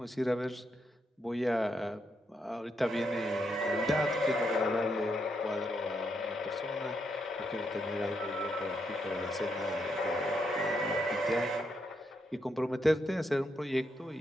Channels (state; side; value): normal; both; correlation 0.80